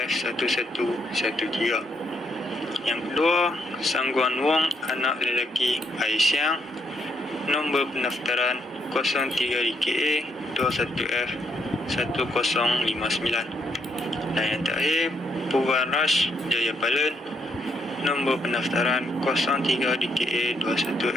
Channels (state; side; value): normal; both; correlation 0.75